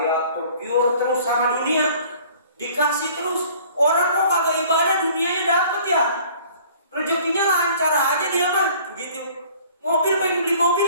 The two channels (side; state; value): both; inverted; correlation -0.52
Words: pure terus sama dunia, dikasih terus. Orang kok kagak ibadah, dunianya dapat ya, rezekinya lancar aja dia mah gitu. Mobil, pengen beli mobil